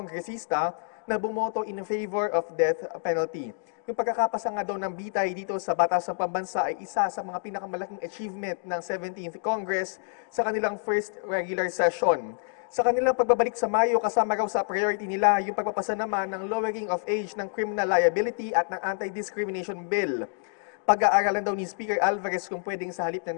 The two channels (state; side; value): silent; right; 60 dB below the other